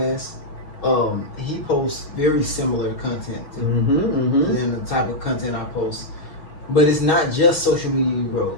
He posts very similar content than the type of content I post, but it's not just social media growth.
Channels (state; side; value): late; right; 6.3 ms